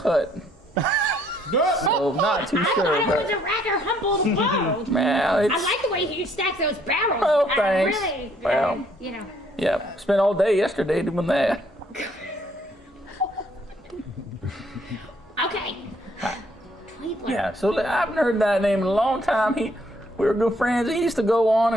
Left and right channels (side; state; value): both; normal; correlation 0.66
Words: So not too I sure, thought it was but a rather humble abode. well, it's I like the way you stack those barrels. Oh, thanks. Really, Well. you know. yeah. Spent all day yesterday doing that. Okay. Tweedler. Yeah, so I haven't heard that name in a long time. We were good friends. He used to go on